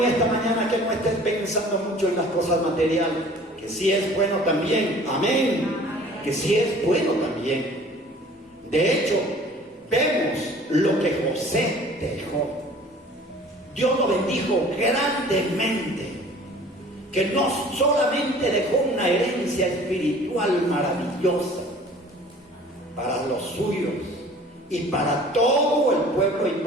esta mañana que no estés pensando mucho en las cosas materiales, que sí es bueno también, amén, que sí es bueno también. De hecho, vemos lo que José dejó. Dios lo bendijo grandemente, que no solamente dejó una herencia espiritual maravillosa para los suyos y para todo el pueblo y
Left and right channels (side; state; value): both; normal; correlation 0.48